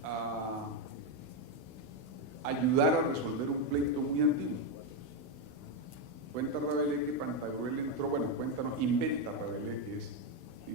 a ayudar a resolver un pleito muy antiguo. Cuenta Rabelais que Pantagruel entró, inventa Rabelais, que es,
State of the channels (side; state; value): left; late; 16 ms